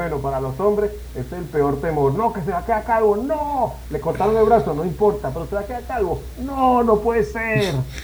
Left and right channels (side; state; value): both; identical; correlation 1.00